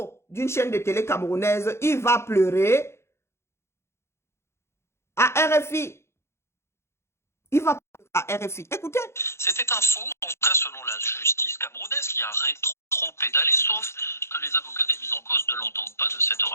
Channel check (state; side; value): late; right; 0.13 ms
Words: d'une chaîne de télé camerounaise. Il va pleurer à RFI. Il va pleurer à RFI. Écoutez. C'était un faux, en tout cas selon la justice camerounaise qui a rétro-pédalé, sauf que les avocats des mises en cause ne l'entendent pas de cette